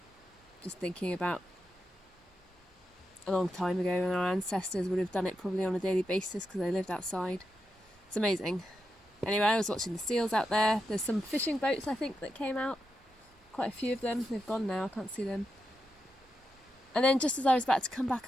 Just thinking about a long time ago when our ancestors would have done it probably on a daily basis because they lived outside. It's amazing. Anyway, I was watching the seals out there. There's some fishing boats I think that came out. Quite a few of them. They've gone now, I can't see them. And then just as I was about to come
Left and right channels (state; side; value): normal; both; correlation 0.87